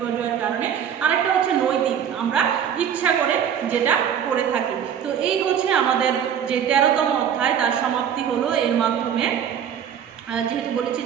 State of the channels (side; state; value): left; quieter; 8.6 dB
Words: কারণে। আরেকটা হচ্ছে নৈতিক, আমরা ইচ্ছা করে যেটা করে থাকি। তো এই হচ্ছে আমাদের যে 13তম অধ্যায়, তার সমাপ্তি হলো এর মাধ্যমে। যেহেতু বলেছি